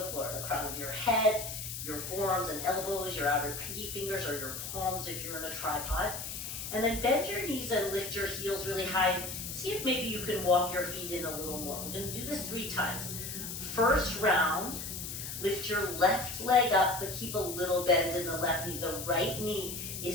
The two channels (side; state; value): left; noise; hiss, 7 dB below the sound